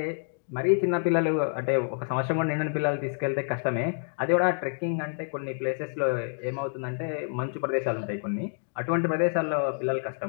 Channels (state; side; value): silent; right; digital silence